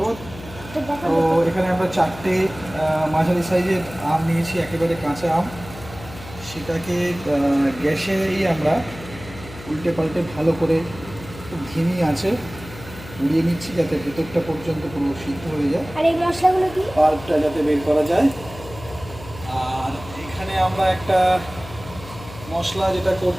তো এখানে আমরা 4টে মাঝারি সাইজের আম নিয়েছি, একেবারে কাঁচা আম। সেটাকে গ্যাসেই আমরা উল্টে পাল্টে ভালো করে খুব ধিমি আছে উড়িয়ে নিচ্ছি, যাতে ভেতরটা পর্যন্ত পুরো সিদ্ধ হয়ে যায়। আর এই মশলাগুলো কি? পাল্পটা যাতে বের করা যায়। আর এখানে আমরা একটা মশলা যেটা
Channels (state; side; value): noise; left; hum, 15 dB below the sound